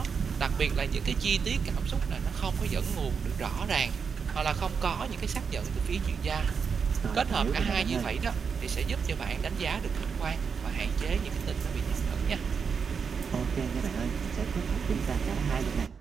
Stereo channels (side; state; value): left; quieter; 6.0 dB